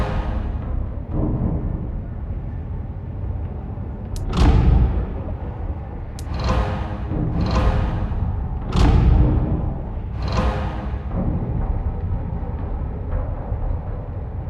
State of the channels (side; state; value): both; identical; correlation 1.00